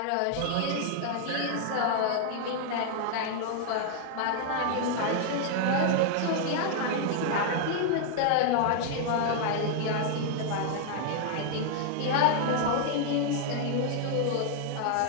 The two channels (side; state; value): both; different; correlation 0.00